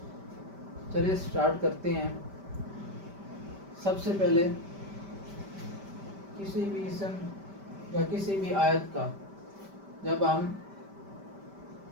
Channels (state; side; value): late; left; 5.1 ms